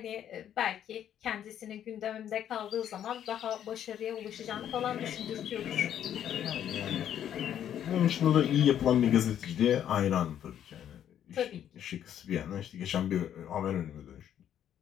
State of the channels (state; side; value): quieter; right; 10.1 dB